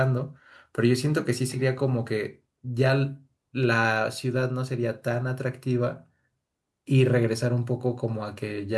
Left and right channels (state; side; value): identical; both; correlation 1.00